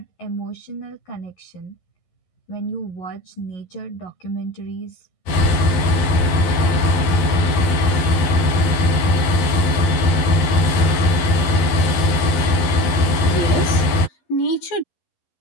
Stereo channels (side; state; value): right; late; 11 ms